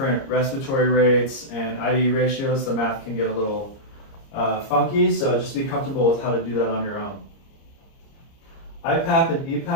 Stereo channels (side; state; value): right; late; 30 ms